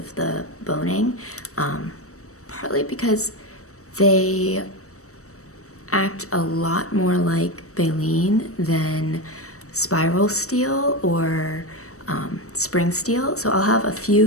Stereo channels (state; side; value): late; right; 0.65 ms